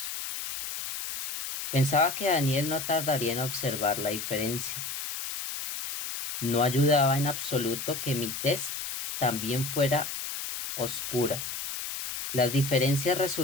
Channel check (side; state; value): left; noise; hiss, 6 dB below the sound